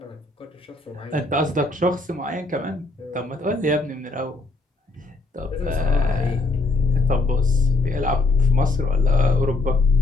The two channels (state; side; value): quieter; right; 3.2 dB